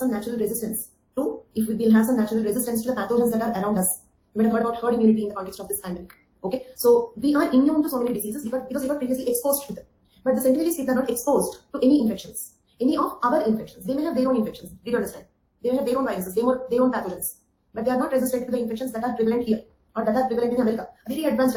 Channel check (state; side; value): identical; both; correlation 1.00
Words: natural resistance to, if we will have some natural resistance to the pathogens that are around us. You might have heard about herd immunity in the context of this pandemic. Okay, so we are immune to so many diseases because we were previously exposed to them. But the Senegalese people are not exposed to any infections, any of our infections. They may have their own infections. Did you understand? They may have their own viruses, their own pathogens, but they are not resistant to the infections that are prevalent here or that are prevalent in America. A very advanced